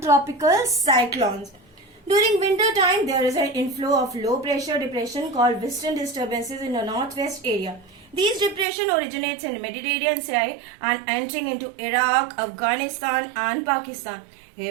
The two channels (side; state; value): left; drops out; at 8.7 s